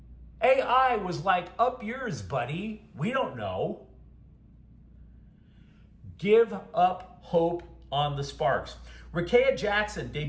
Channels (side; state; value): both; identical; correlation 1.00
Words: AI was like, up yours, buddy. We don't know. Give up hope on the Sparks. Rakea Jackson